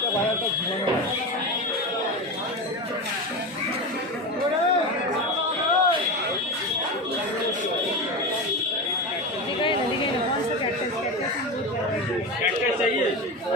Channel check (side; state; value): both; normal; correlation 0.22